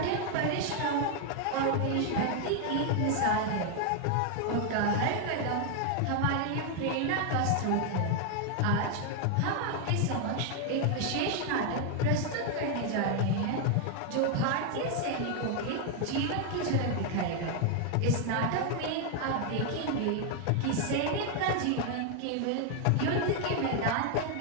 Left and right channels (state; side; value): different; both; correlation 0.00